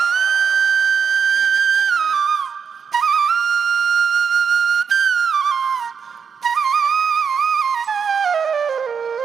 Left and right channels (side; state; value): left; quieter; 6.5 dB